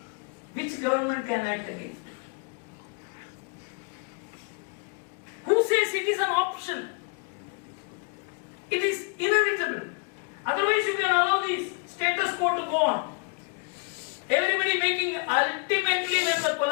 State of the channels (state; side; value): quieter; right; 35.0 dB